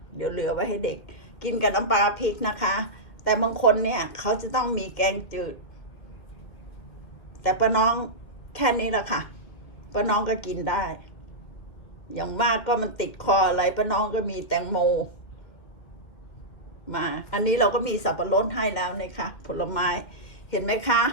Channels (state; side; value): late; right; 2.1 ms